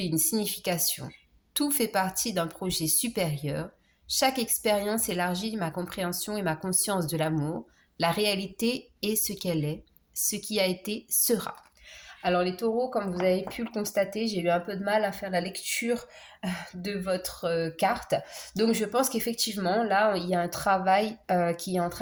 une signification. Tout fait partie d'un projet supérieur. Chaque expérience élargit ma compréhension et ma conscience de l'amour. La réalité est ce qu'elle est. Ce qui a été sera. Alors les taureaux, comme vous avez pu le constater, j'ai eu un peu de mal à faire la lecture de votre carte. Donc je pense qu'effectivement, là, il y a un travail qui est en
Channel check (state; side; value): identical; both; correlation 1.00